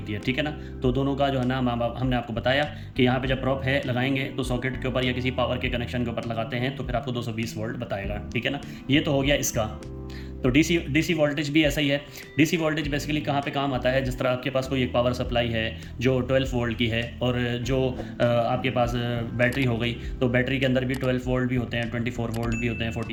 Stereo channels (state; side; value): identical; both; correlation 1.00